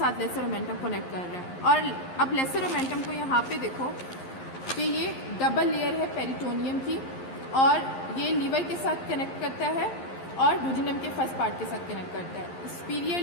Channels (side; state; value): right; late; 11 ms